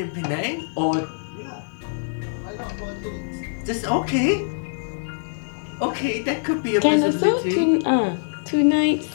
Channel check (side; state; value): right; silent; digital silence